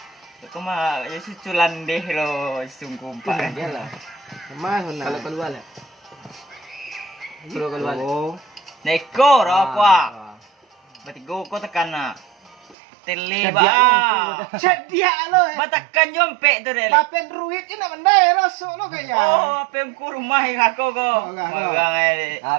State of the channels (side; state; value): left; drops out; at 12.8 s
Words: Kau mah ya suculan deh lo sungguh pak. Iyalah. Mas mana? Kalau keluar lah. Keluar. Neko apa? Berarti go kau tekan na. Tele ba. Cedia lo. Batakan jompe tu deh. Papen ruit ini nak mandai rasuk lo kaya. Oh, apa yang ku rumah aku ko. Magang ai.